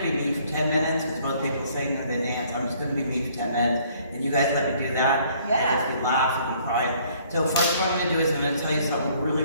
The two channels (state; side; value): inverted; both; correlation -0.61